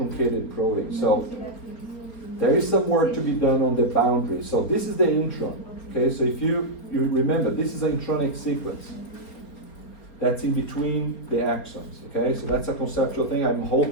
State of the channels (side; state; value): right; late; 4.3 ms